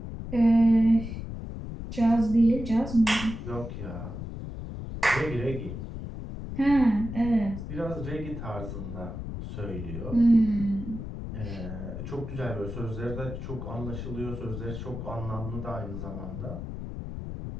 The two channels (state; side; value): noise; left; rumble, 7 dB below the sound